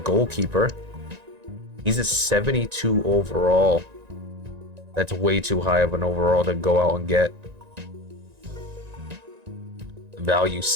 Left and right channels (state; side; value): late; left; 1.9 ms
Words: He's a 72 overall. That's way too high of an overall to go out and get. Value